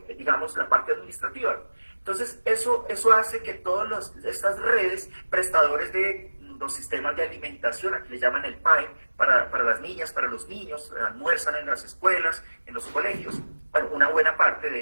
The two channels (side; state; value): both; inverted; correlation -1.00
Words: digamos, la parte administrativa. Entonces, eso hace que todas estas redes, prestadores de los sistemas de alimentación, aquí le llaman el PAE, para las niñas, para los niños, almuerzan en las escuelas, en los colegios, bueno, una buena parte de